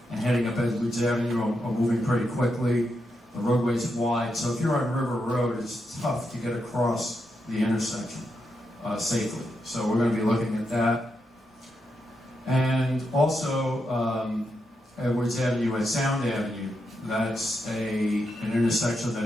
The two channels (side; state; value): both; normal; correlation 0.84